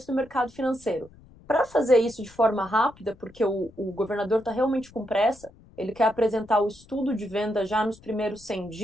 do mercado financeiro. para fazer isso de forma rápida, porque o governador está realmente com pressa, ele quer apresentar o estudo de venda já nos primeiros 100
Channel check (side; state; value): left; noise; rumble, 25 dB below the sound